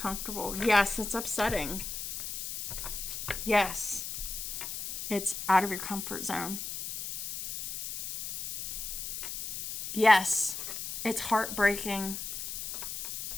Yes, it's upsetting. Yes, it's out of your comfort zone. Yes, it's heartbreaking.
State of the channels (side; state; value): left; noise; hiss, 6 dB below the sound